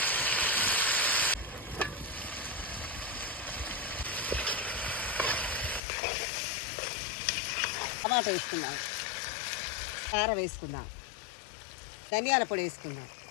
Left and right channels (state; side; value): drops out; right; at 5.8 s